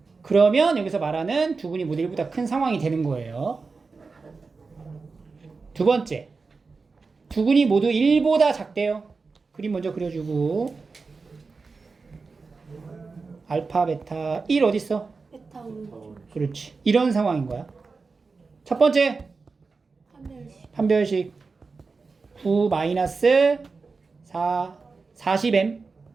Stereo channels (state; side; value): quieter; left; 4.4 dB